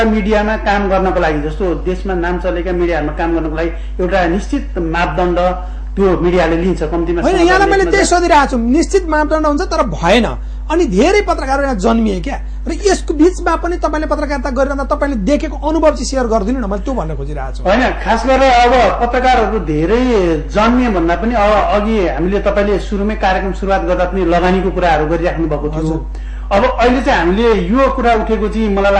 मिडियामा काम गर्नको लागि जस्तो देशमा नाम चलेका मिडियाहरूमा काम गर्नको लागि एउटा निश्चित मापदण्ड त्यो मिडियाले लिन्छ कम्तीमा। यहाँलाई मैले त्यही सोधिरहेको छु, निश्चित मापदण्ड हुन्छ तर भएन। अनि धेरै पत्रकारहरू यहाँ जन्मिए क्या, र यसको बीचमा पनि तपाईँले पत्रकारिता गरिरहँदा तपाईँले देखेको अनुभव चाहिँ सेयर गरिदिनु न, मैले त्यो भन्न खोजिरहेको छु। होइन, खास गरेर अब पत्रकारहरू धेरै जन्मिए भन्दा पनि अब अघि हामीले तपाईँले सुरुमै कार्यक्रम सुरुवात गर्दा पनि लगानीको कुराहरू गरिराख्नु भएको थियो। अब अहिले चाहिँ हामीले यो कुरा उठेको चाहिँ मलाई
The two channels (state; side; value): identical; both; correlation 1.00